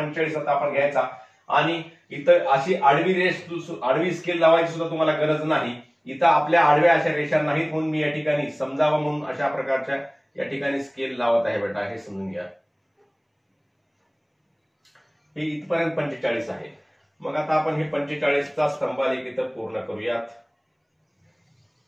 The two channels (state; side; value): identical; both; correlation 1.00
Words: आता आपण घ्यायचा. आणि इथं अशी आडवी स्केल लावायची सुद्धा तुम्हाला गरज नाही. इथं आपल्या आडव्या अशा रेषा नाहीत म्हणून मी या ठिकाणी समजावं म्हणून अशा प्रकारच्या या ठिकाणी स्केल लावत आहे बेटा. हे समजून घ्या. हे इथपर्यंत 45 आहे. मग आता आपण हे 45चा स्तंभालेख इथं पूर्ण करूयात.